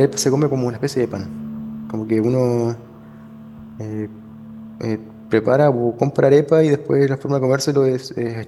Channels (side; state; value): both; identical; correlation 1.00